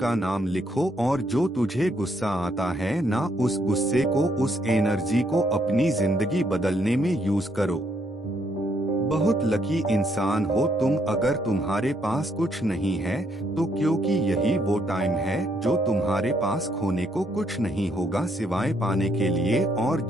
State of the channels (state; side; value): normal; both; correlation 0.72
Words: नाम लिखो और जो तुझे गुस्सा आता है ना, उस गुस्से को, उस एनर्जी को अपनी जिंदगी बदलने में यूज करो। बहुत लकी इंसान हो तुम अगर तुम्हारे पास कुछ नहीं है तो, क्योंकि यही वो टाइम है जो तुम्हारे पास खोने को कुछ नहीं होगा सिवाय पाने के लिए। और